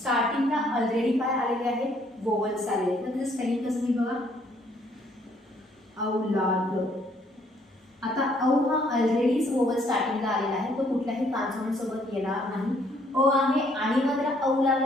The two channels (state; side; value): normal; both; correlation 0.66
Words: ऑलरेडी काय आलेले आहेत, वोवल्स आलेले आहेत, तर त्याचं स्पेलिंग कसं मी बघा, औलाद. आता औ हा ऑलरेडीच वोवल स्टार्टिंगला आलेला आहे, तो कुठल्याही कॉन्सोनंट सोबत येणार नाही. अ आहे आणि मग त्याला औ